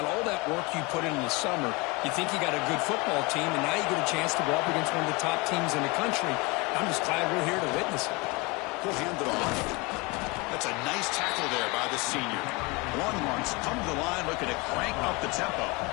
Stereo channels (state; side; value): quieter; right; 26.4 dB